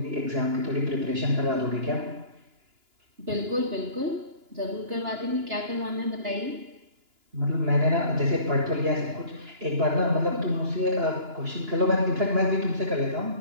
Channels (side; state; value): left; late; 2.9 ms